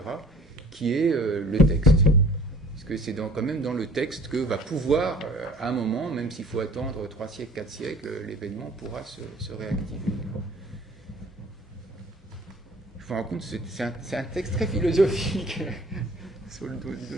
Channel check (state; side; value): normal; both; correlation 0.50